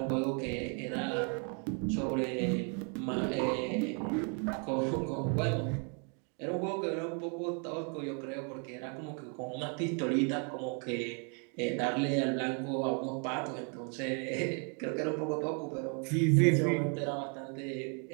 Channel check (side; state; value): left; quieter; 39.0 dB